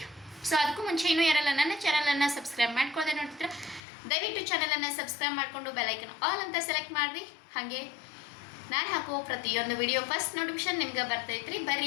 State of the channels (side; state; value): right; drops out; at 3.8 s